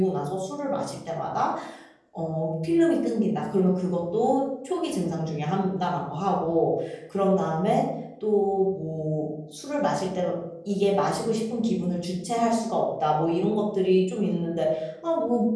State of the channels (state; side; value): identical; both; correlation 1.00